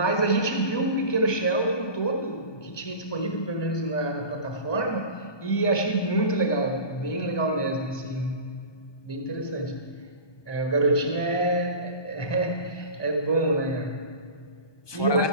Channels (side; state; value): right; late; 1.2 ms